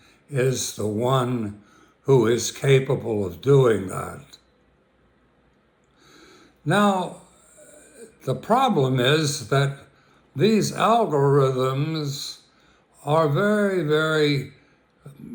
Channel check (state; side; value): identical; both; correlation 1.00